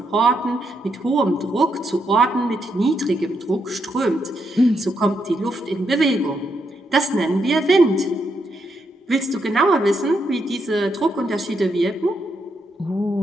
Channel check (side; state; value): both; normal; correlation 0.79